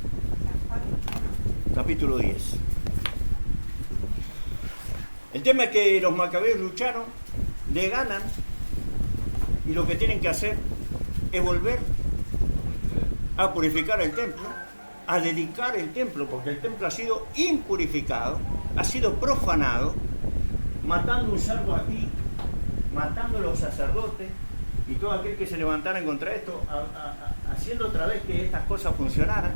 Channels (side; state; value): both; inverted; correlation -1.00